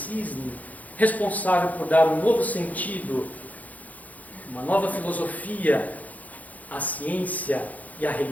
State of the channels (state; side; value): late; right; 0.077 ms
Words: responsável por dar um novo sentido, uma nova filosofia à ciência e à